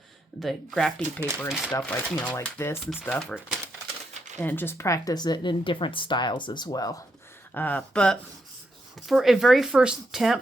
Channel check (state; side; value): normal; both; correlation 0.80